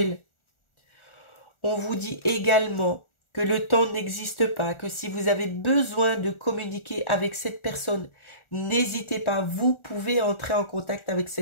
On vous dit également que le temps n'existe pas, que si vous avez besoin de communiquer avec cette personne, n'hésitez pas, vous pouvez entrer en contact avec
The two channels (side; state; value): right; late; 1.4 ms